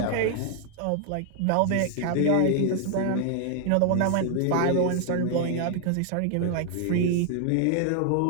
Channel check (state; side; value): different; both; correlation 0.00